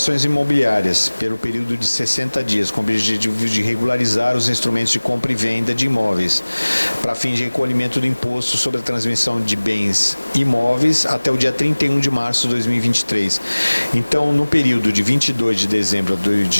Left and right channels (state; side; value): inverted; both; correlation -1.00